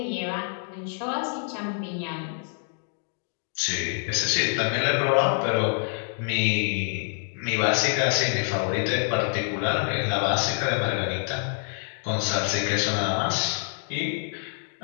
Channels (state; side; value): silent; right; 61 dB below the other